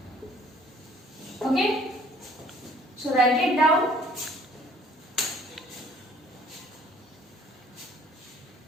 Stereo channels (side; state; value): both; normal; correlation 0.57